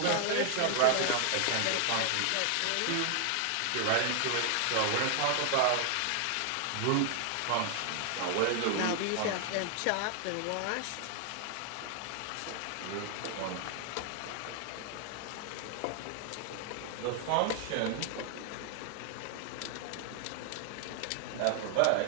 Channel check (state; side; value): different; both; correlation 0.00